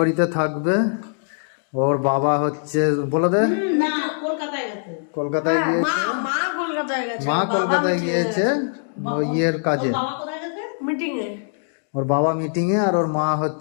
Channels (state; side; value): silent; right; digital silence